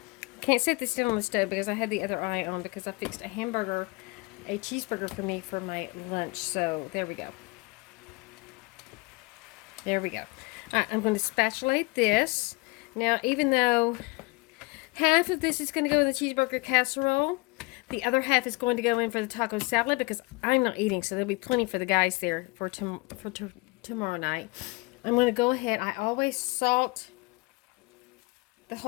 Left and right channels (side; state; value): right; quieter; 26.0 dB